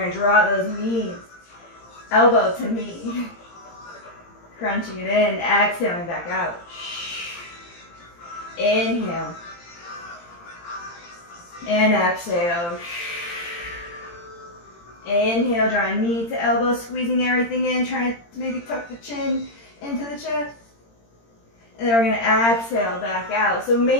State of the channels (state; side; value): late; right; 17 ms